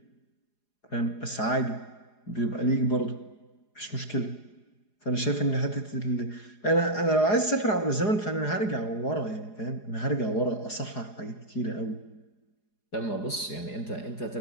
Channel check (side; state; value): right; late; 4.8 ms